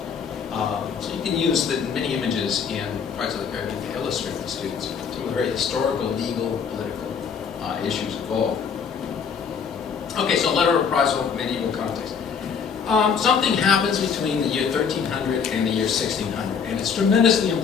So you can use the many images in Pirates of the Caribbean to illustrate to students some of the very historical, legal, political issues involved. Okay, so letter of reprisal, medieval context. Something happens between the year 1300 and the year 1600, and it's tremendously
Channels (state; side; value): quieter; right; 6.5 dB